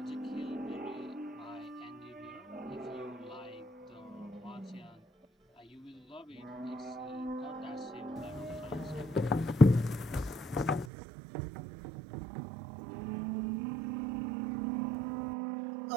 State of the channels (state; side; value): drops out; left; at 10.9 s